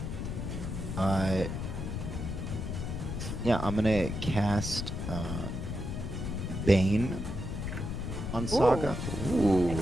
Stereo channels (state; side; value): noise; left; rumble, 4 dB below the sound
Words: Yeah, I'm gonna cast Bane on Saga. Ooh.